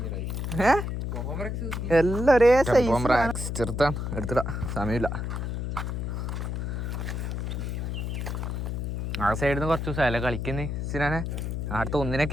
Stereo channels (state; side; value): noise; left; hum, 3 dB below the sound